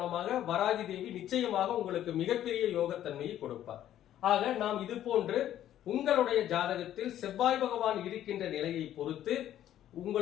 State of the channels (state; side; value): quieter; right; 11.8 dB